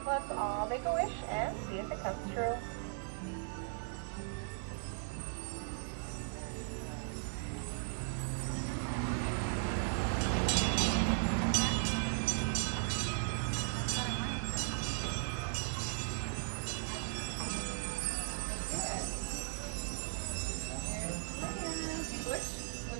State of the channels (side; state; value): left; silent; digital silence